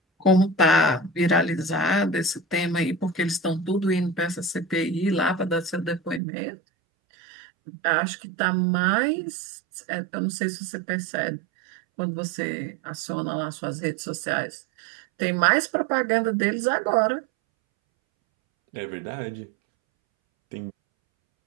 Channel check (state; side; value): drops out; left; at 6.2 s